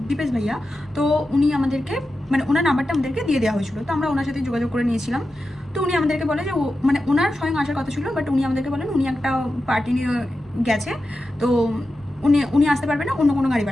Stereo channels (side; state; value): both; normal; correlation 0.91